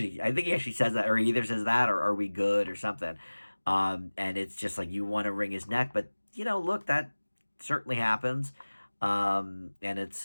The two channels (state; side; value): inverted; both; correlation -1.00